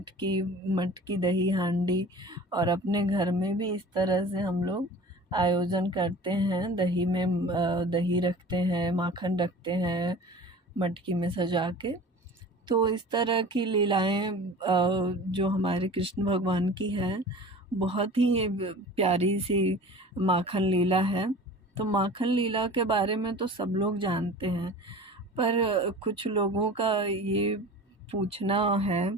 दही हांडी। और अपने घर में भी इस तरह से हम लोग आयोजन करते हैं। दही में दही रखते हैं, माखन रखते हैं मटकी में सजा के। तो इस तरह की लीलाएं जो हमारे कृष्ण भगवान की है, बहुत ही प्यारी सी माखन लीला है। तो माखन लीला के बारे में तो सब लोग जानते हैं, पर कुछ लोगों का ये पूछना है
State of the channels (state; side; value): normal; both; correlation 0.40